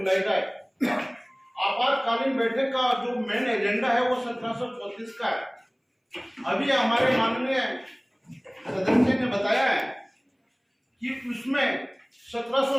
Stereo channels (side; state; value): both; identical; correlation 1.00